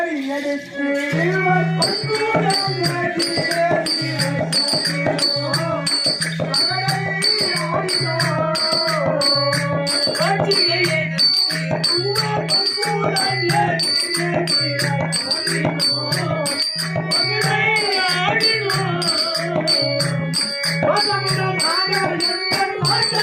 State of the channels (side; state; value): both; identical; correlation 1.00